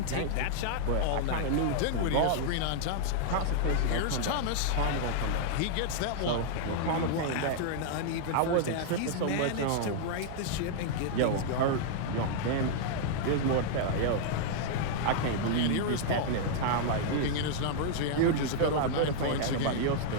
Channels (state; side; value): different; both; correlation -0.01